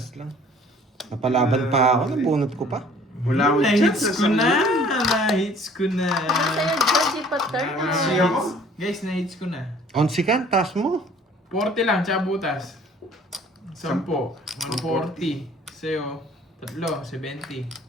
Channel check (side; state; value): both; normal; correlation 0.53